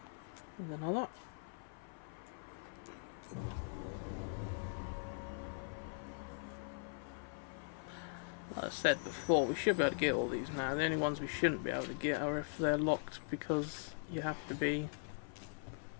There's another. Like I said before, we should be able to get all these now. The only ones we shouldn't be able to get are if they're locked because you have to be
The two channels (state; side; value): silent; right; 51 dB below the other